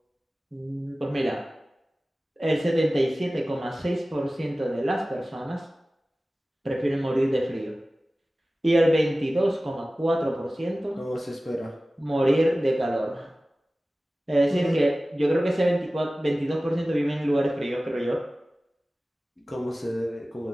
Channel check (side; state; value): both; normal; correlation 0.97